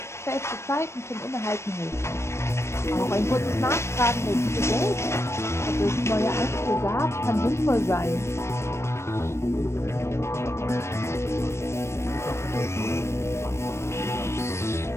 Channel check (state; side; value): late; right; 0.13 ms